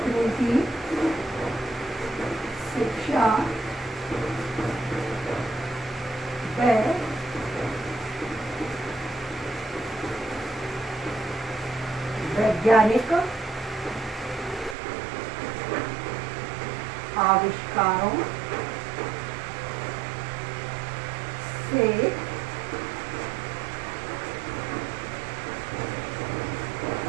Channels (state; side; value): drops out; left; at 14.8 s